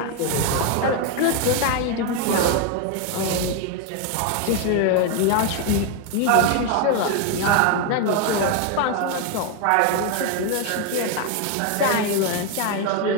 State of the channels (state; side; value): different; both; correlation 0.01